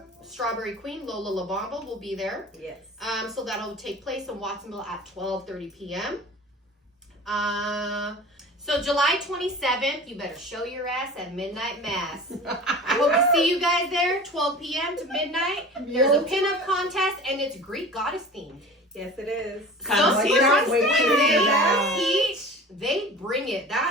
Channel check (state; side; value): normal; both; correlation 0.39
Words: Strawberry Queen, Lola LaBamba, will be there. Yes. So that'll take place in Watsonville at 12:30 p.m. So July 27th, you better show your ass at Midnight Mass. I hope to see you guys there, 12 p.m. to midnight. There's a pinup contest, and it's Greek goddess themed. Yes, it is. Come see cannot us. wait to hear that. They bring it.